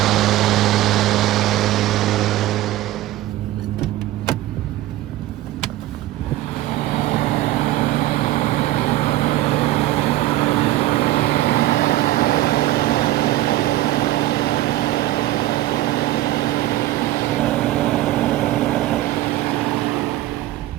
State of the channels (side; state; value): left; quieter; 15.4 dB